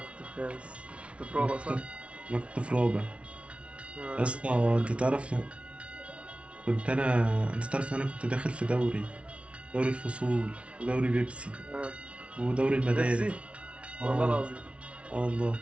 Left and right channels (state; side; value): late; left; 0.061 ms